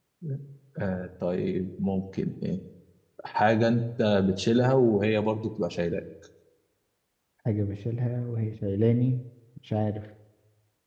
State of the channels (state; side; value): identical; both; correlation 1.00